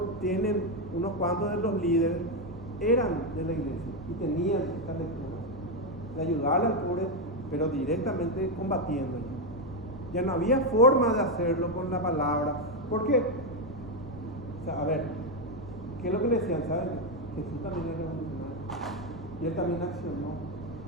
tienen unos cuantos de los líderes, eran de la iglesia y tenían esta lectura de ayudarle al pobre, pero directamente combatiendo. Ya no había forma de hacerlo con la palabra. ¿Por qué? O sea, a ver, ¿qué es lo que le decían? ¿Saben? Jesús también era revolucionario y él también accionó.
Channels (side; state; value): left; noise; rumble, 17 dB below the sound